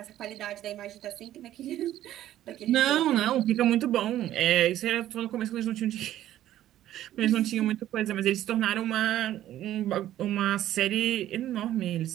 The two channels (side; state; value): left; quieter; 12.9 dB